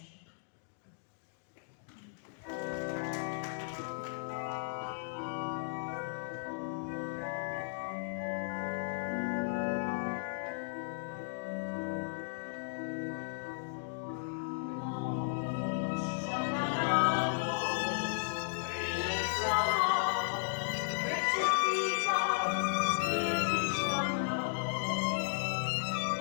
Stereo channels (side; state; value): right; silent; digital silence